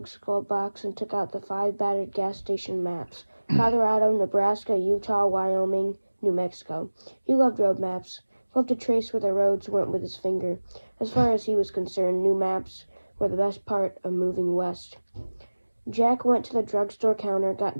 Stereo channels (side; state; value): both; inverted; correlation -1.00